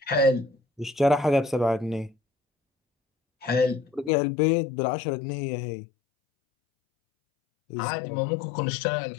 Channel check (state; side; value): drops out; right; at 4.1 s